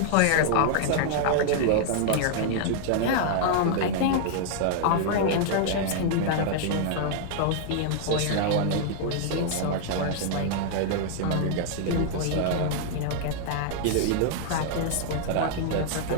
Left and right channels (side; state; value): both; different; correlation -0.01